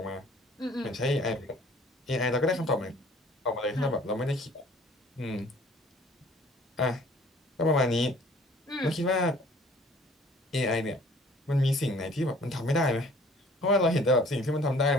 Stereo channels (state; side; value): normal; both; correlation 0.53